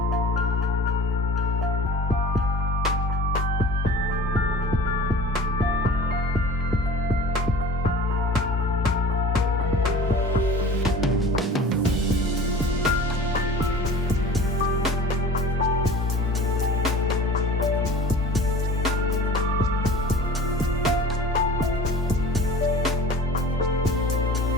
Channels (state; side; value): normal; both; correlation 0.41